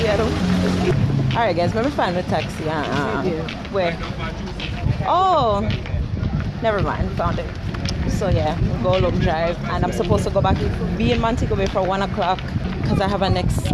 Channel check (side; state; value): both; identical; correlation 1.00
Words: Alright guys, let me find the taxi. Where? Oh, never mind, found it. So yeah, we'll go long drive, and I'm supposed to go back, be in Montego Bay for 1 o'clock because I have a next